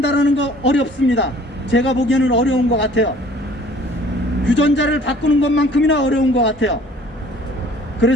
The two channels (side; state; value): both; normal; correlation 0.53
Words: 거 어렵습니다. 제가 보기에는 어려운 것 같아요. 유전자를 바꾸는 것만큼이나 어려운 것 같아요.